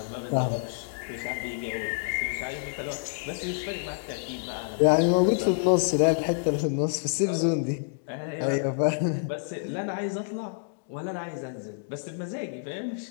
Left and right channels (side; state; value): right; silent; digital silence